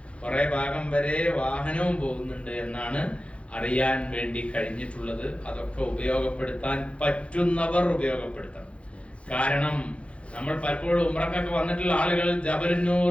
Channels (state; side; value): late; right; 0.061 ms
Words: കുറെ ഭാഗം വരെ വാഹനവും പോകുന്നുണ്ട് എന്നാണ് അറിയാൻ വേണ്ടി കഴിഞ്ഞിട്ടുള്ളത്. അതൊക്കെ ഉപയോഗപ്പെടുത്താൻ പറ്റുന്നവർ ഉപയോഗപ്പെടുത്തണം. കാരണം നമ്മൾ പലപ്പോഴും ഉംറക്കൊക്കെ വന്നിട്ടുള്ള ആളുകൾ